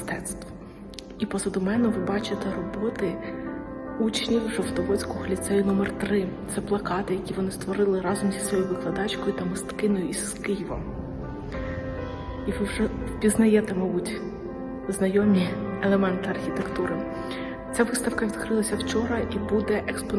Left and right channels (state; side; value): identical; both; correlation 1.00